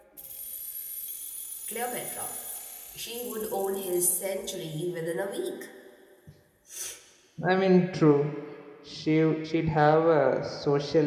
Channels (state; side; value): identical; both; correlation 1.00